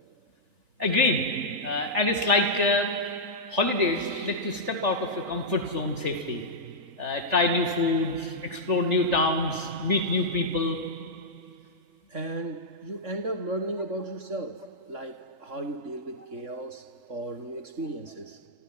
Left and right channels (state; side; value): late; left; 3.4 ms